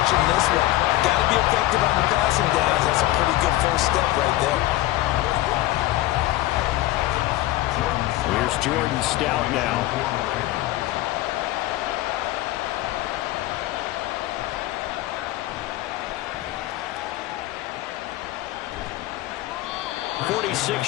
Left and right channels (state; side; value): quieter; right; 16.6 dB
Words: in this one. Got to be effective on the passing downs. That's a pretty good first step right there. Here's Jordan Stout now.